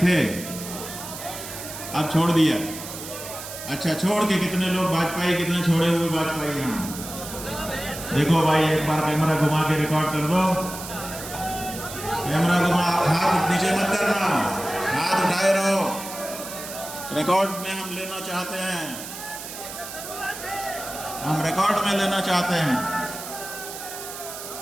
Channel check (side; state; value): right; noise; hiss, 10 dB below the sound